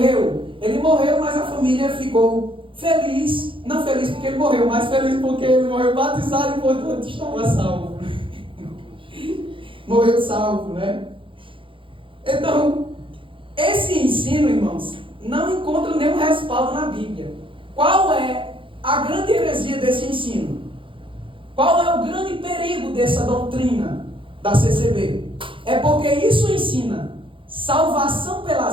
Ele morreu, mas a família ficou feliz. Não feliz porque ele morreu, mas feliz porque ele morreu batizado e, portanto, estava salvo. Morreu salvo, né? Então, esse ensino, irmãos, não encontra nenhum respaldo na Bíblia. Qual é a grande heresia desse ensino? Qual é o grande perigo dessa doutrina da CCB? É porque isso ensina salvação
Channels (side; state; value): left; late; 0.25 ms